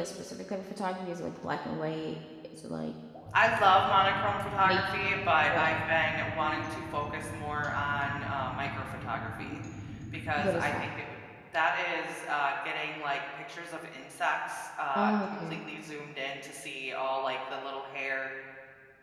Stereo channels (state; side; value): identical; both; correlation 1.00